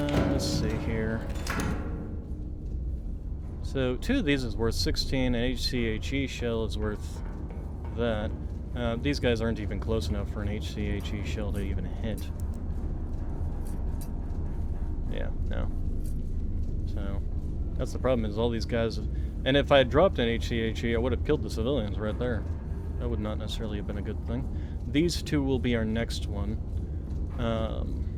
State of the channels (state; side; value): identical; both; correlation 1.00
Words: see here. So 2 of these is worth 16, an HCHE shell is worth that. These guys aren't even close enough for an HCHE shell to even hit. Yeah, no. So, that's the problem, is all these guys... And if I had dropped an HCHE, I would have killed the civilians right there. That would not necessarily have been a good thing. These 2 will be our next one.